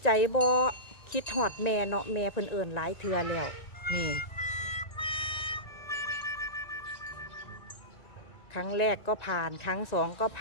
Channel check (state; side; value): late; right; 1.9 ms